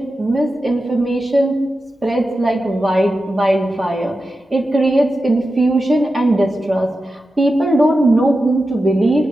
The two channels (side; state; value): both; normal; correlation 0.91